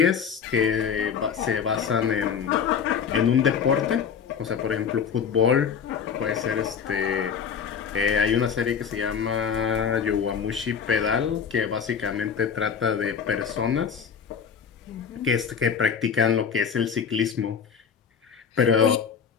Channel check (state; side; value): quieter; right; 7.0 dB